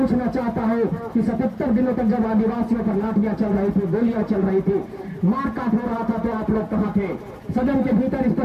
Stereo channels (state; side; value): identical; both; correlation 1.00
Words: चाहता हूँ कि 77 दिनों तक जब आदिवासियों पर लाठियां चल रही थी, गोलियां चल रही थी, मारकाट हो रहा था, तो आप लोग कहाँ थे? सदन के भीतर इस